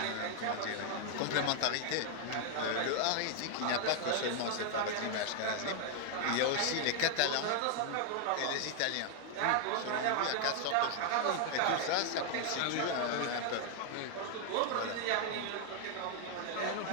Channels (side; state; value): both; different; correlation 0.00